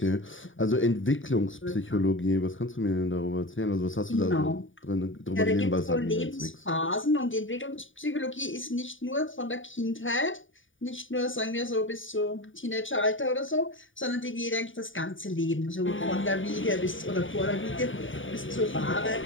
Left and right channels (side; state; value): right; late; 0.57 ms